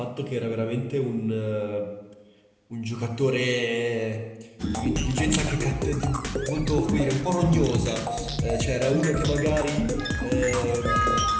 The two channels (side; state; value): both; identical; correlation 1.00